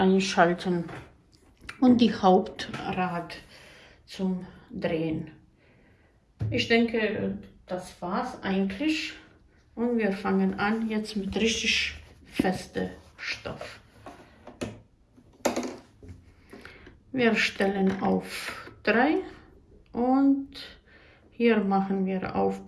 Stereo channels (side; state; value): both; identical; correlation 1.00